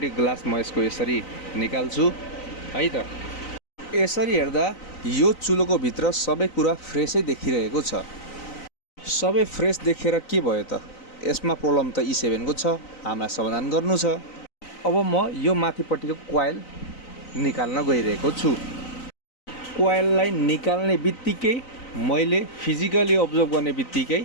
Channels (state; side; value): late; right; 3.9 ms